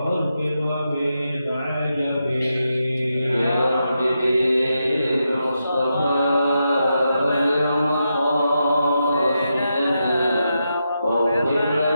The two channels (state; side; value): inverted; both; correlation -0.86